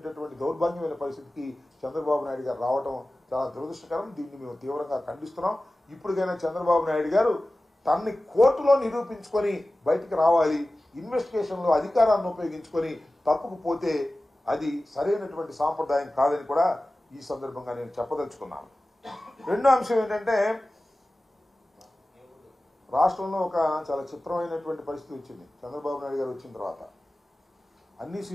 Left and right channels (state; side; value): normal; both; correlation 0.96